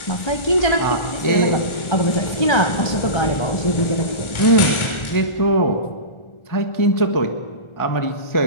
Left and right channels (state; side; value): late; right; 1.4 ms